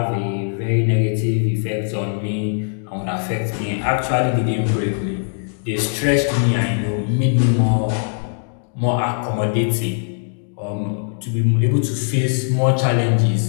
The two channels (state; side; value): silent; right; digital silence